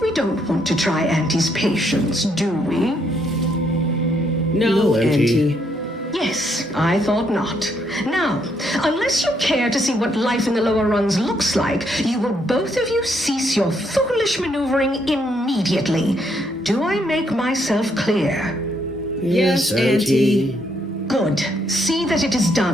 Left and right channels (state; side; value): normal; both; correlation 0.73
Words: We don't want to try Auntie's patience, do we? No, Auntie. Yes, I thought not. Now, unless you care to see what life in the lower rungs looks like, you will both of you cease your foolish maneuvering immediately. Do I make myself clear? Yes, Auntie. Good. See that it is